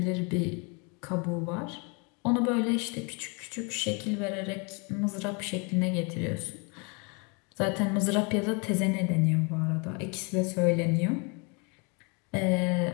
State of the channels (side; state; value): right; quieter; 32.5 dB